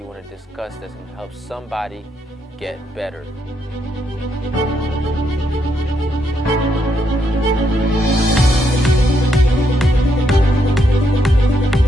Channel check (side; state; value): both; normal; correlation 0.77